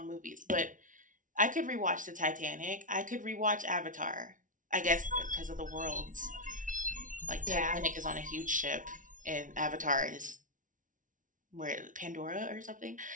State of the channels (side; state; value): left; late; 0.38 ms